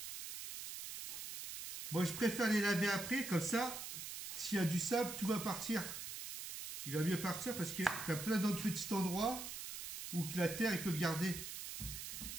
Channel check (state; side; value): noise; right; hiss, 7 dB below the sound